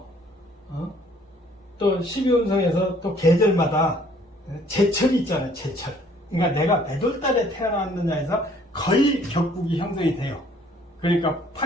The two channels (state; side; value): normal; both; correlation 0.59